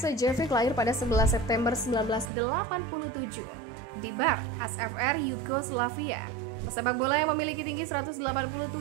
lahir pada 11 September 1987 di Bar, SFR Yugoslavia. Pesepak bola yang memiliki tinggi 187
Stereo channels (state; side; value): drops out; left; at 2.3 s